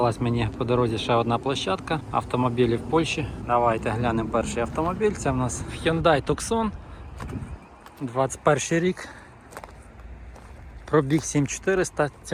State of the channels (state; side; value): identical; both; correlation 1.00